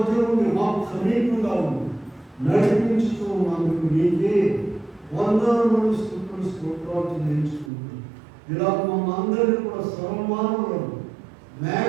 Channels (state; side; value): drops out; left; at 7.7 s